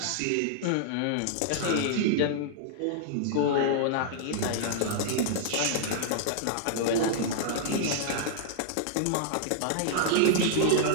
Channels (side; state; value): both; different; correlation -0.01